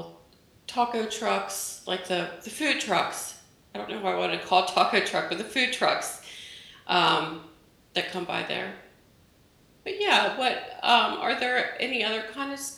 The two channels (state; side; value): identical; both; correlation 1.00